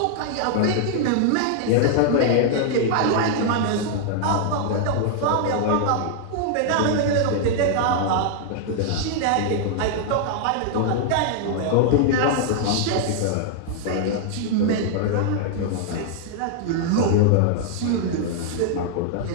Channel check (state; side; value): different; both; correlation -0.01